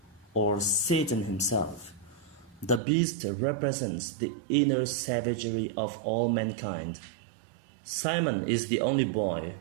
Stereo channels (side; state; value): left; drops out; at 2.8 s